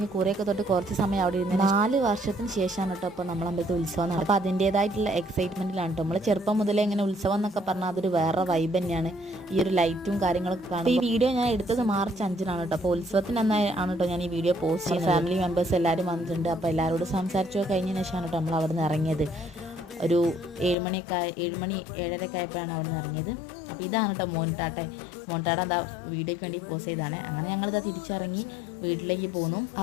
കുറേയൊക്കെ തൊട്ട് കുറച്ച് സമയം അവിടെ ഇരുന്ന് 4 വർഷത്തിന് ശേഷമാണ് കേട്ടോ അപ്പോൾ നമ്മൾ അമ്പലത്തിൽ ഉത്സവം നടക്കും. അപ്പോൾ അതിൻ്റേതായിട്ടുള്ള എക്സൈറ്റ്മെൻറ്റിലാണ് കേട്ടോ. നമ്മൾ ചെറുപ്പം മുതലേ ഇങ്ങനെ ഉത്സവം എന്നൊക്കെ പറഞ്ഞാൽ അതൊരു വേറെ വൈബ് തന്നെയാണ്. ഈ ഒരു ലൈറ്റും കാര്യങ്ങളൊക്കെ കാണും. ഈ വീഡിയോ ഞാൻ എടുത്തത് മാർച്ച് 5-നാണ് കേട്ടോ. അപ്പോൾ ഉത്സവത്തിന് ആണ് കേട്ടോ ഞാൻ ഈ വീഡിയോ പോസ്റ്റ് ചെയ്യുന്നത്. ഫാമിലി മെമ്പേഴ്സ് എല്ലാവരും വന്നിട്ടുണ്ട്. അപ്പോൾ എല്ലാവരോടും സംസാരിച്ചോ കഴിഞ്ഞതിന് ശേഷമാണ് കേട്ടോ നമ്മൾ അവിടെ നിന്ന് ഇറങ്ങിയത്. ഒരു 7 മണി 7:30 ആയപ്പോഴാണ് അവിടെ നിന്ന് ഇറങ്ങിയത്. അപ്പോൾ ഇതാണ് കേട്ടോ മോൻടാട്ട എന്താ വീഡിയോയ്ക്ക് വേണ്ടി പോസ്റ്റ് ചെയ്താണ്. അങ്ങനെ ഞങ്ങളിതാ തിരിച്ചിറങ്ങി വീട്ടിലേക്ക് പോന്നു.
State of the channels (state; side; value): drops out; right; at 20.8 s